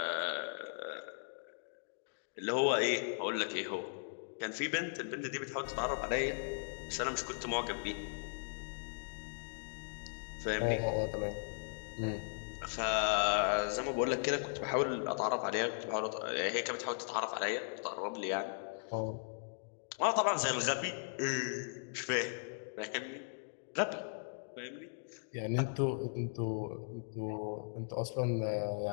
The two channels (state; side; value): silent; right; digital silence